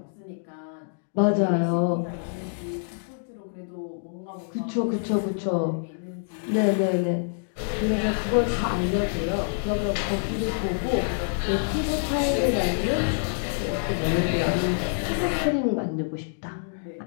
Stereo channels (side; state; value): right; silent; digital silence